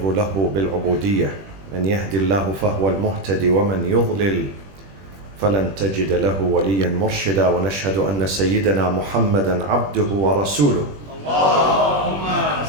له بالعبودية. من يهدي الله فهو المهتدي ومن يضلل فلن تجد له وليا مرشدا. ونشهد أن سيدنا محمدا عبده ورسوله. اللهم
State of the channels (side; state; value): left; late; 21 ms